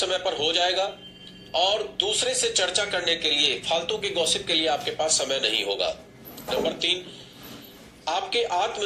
पर हो जाएगा और दूसरे से चर्चा करने के लिए, फालतू के गॉसिप के लिए आपके पास समय नहीं होगा। नंबर 3, आपके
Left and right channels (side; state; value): both; identical; correlation 1.00